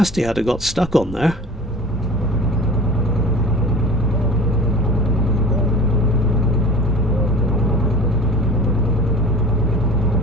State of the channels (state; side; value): normal; both; correlation 0.39